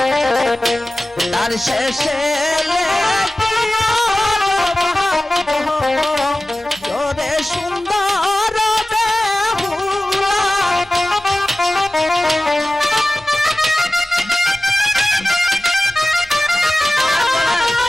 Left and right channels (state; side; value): normal; both; correlation 0.96